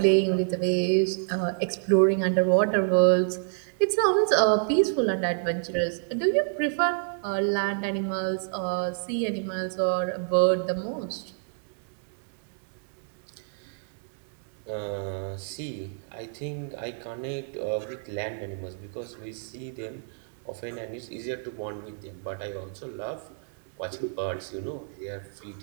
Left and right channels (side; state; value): left; silent; 59 dB below the other